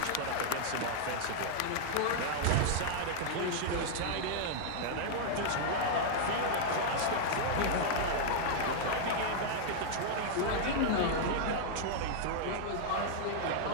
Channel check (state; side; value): different; both; correlation -0.01